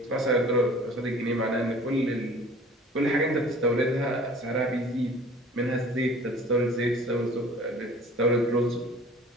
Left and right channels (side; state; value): both; normal; correlation 0.47